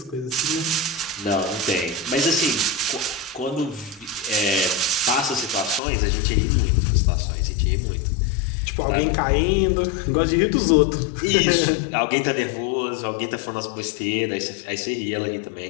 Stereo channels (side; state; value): right; drops out; at 5.8 s